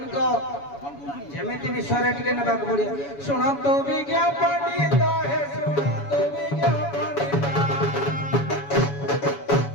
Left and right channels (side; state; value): right; late; 7.1 ms